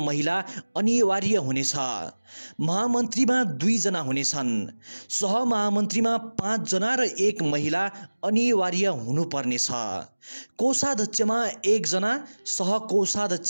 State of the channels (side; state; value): both; inverted; correlation -1.00